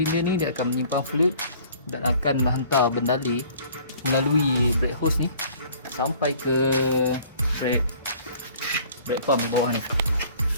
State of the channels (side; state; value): both; inverted; correlation -0.53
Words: ni, dia akan menyimpan fluid dan akan menghantar bendali melalui brake hose ni sampai ke brake pump di bawah ni.